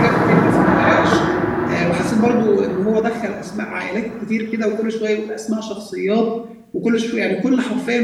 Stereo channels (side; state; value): both; identical; correlation 1.00